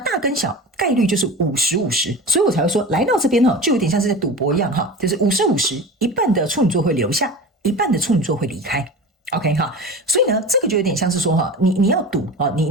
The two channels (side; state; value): both; normal; correlation 0.32